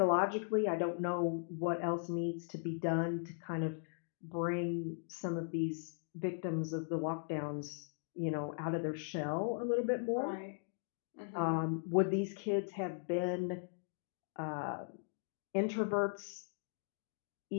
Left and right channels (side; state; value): right; silent; digital silence